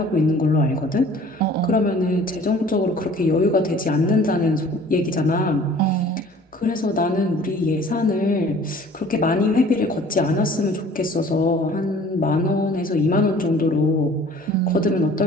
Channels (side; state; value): both; normal; correlation 0.50